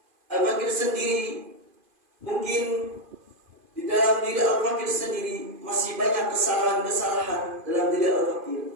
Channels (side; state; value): left; late; 2.5 ms